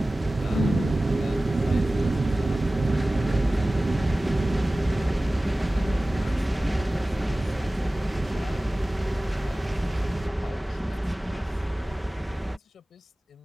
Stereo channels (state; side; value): normal; both; correlation 0.97